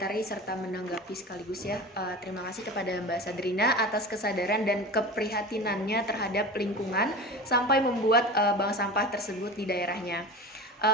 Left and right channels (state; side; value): normal; both; correlation 0.32